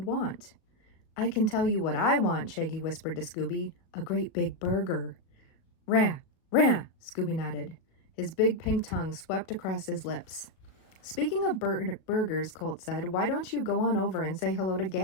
want. I can tell you what I want, Shaggy whispered to Scooby. A great big burger. Rah, rah, Scooby nodded. His big pink tongue swept across his lips. Speaking of burgers, Colt said, why don't you go on over and say hello to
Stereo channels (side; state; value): right; late; 37 ms